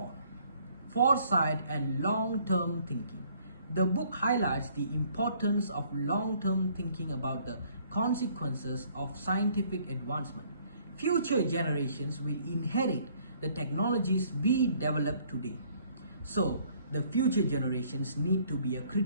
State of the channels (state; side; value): inverted; both; correlation -0.62